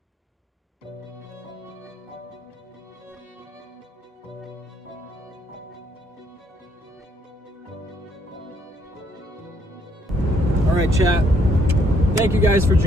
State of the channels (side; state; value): both; normal; correlation 0.70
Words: All right, chat. Thank you guys for